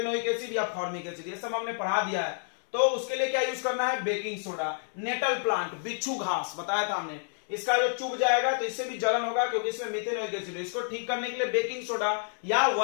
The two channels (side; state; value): right; silent; 58 dB below the other